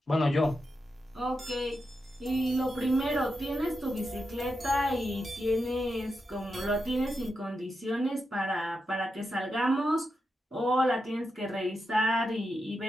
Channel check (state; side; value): normal; both; correlation 0.87